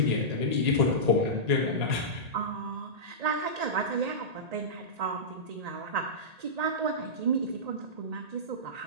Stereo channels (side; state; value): left; late; 1.8 ms